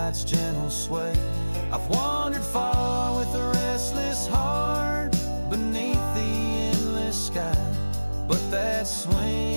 gentle sway. I've wandered far with a restless heart beneath the endless sky, but that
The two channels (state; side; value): inverted; both; correlation -1.00